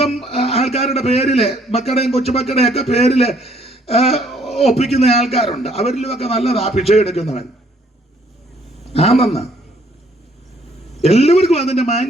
ആൾക്കാരുടെ പേരില്, മക്കളുടെയും കൊച്ചുമക്കളുടെയും ഒക്കെ പേരില് ഒപ്പിക്കുന്ന ആൾക്കാരുണ്ട്, അവരിലുമൊക്കെ നല്ലതാ ഭിക്ഷ എടുക്കുന്നവൻ. ആണെന്ന് എല്ലാവർക്കും അതിന്റെ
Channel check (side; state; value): both; normal; correlation 0.64